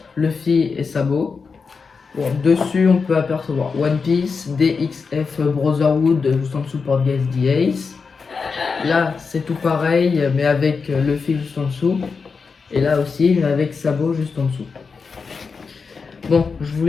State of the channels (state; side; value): quieter; right; 5.1 dB